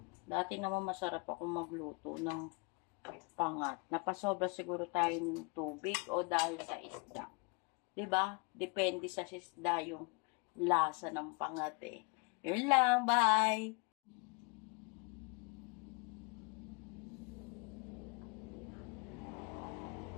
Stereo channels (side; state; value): right; quieter; 32.0 dB